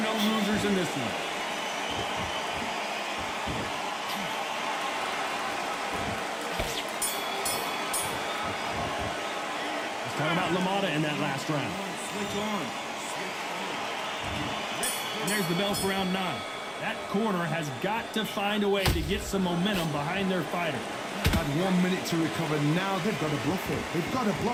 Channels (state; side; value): identical; both; correlation 1.00